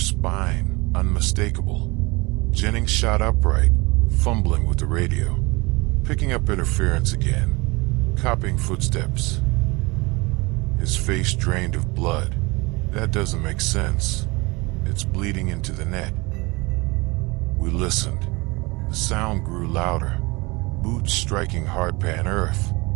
spine, unmistakable. Jennings shot upright, fumbling with the radio. Picking up interference again. Copying footsteps. His face drained of blood. That doesn't make sense. It's bleeding into the net. We listened. The sound grew louder. Boots striking hardpan earth.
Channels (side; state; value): left; quieter; 24.9 dB